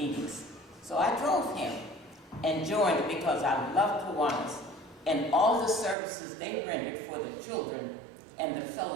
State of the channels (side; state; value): left; drops out; at 6.0 s